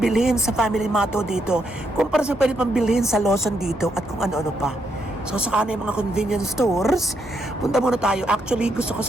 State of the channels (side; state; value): both; normal; correlation 0.78